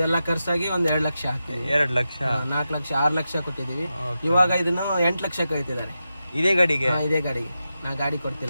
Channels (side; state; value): both; inverted; correlation -0.90